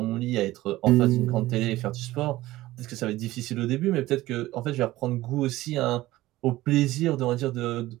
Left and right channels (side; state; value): left; quieter; 17.0 dB